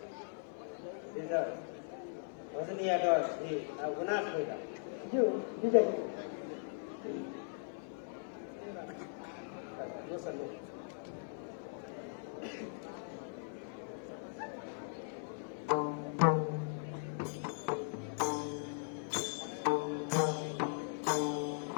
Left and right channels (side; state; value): right; silent; digital silence